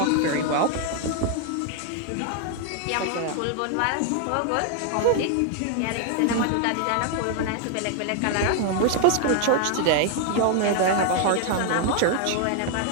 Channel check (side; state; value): both; different; correlation 0.00